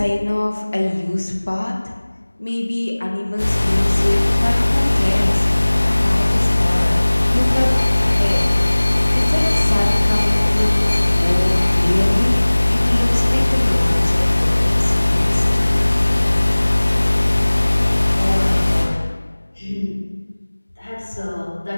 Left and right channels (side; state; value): both; inverted; correlation -1.00